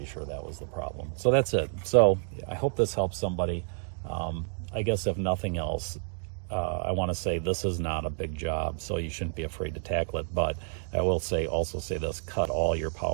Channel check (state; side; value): silent; left; 56 dB below the other